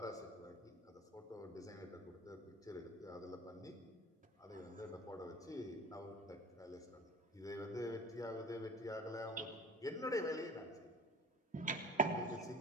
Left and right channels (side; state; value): both; normal; correlation 0.40